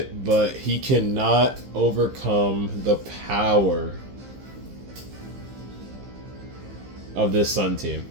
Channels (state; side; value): late; left; 15 ms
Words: but he cannot overcome the power of this Sun team.